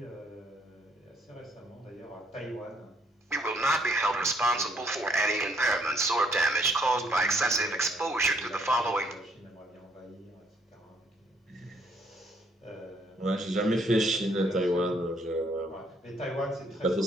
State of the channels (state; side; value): normal; both; correlation 0.67